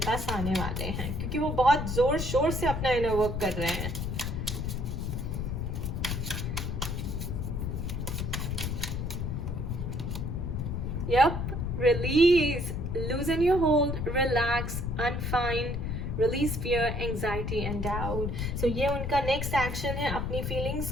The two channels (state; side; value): noise; left; rumble, 2 dB below the sound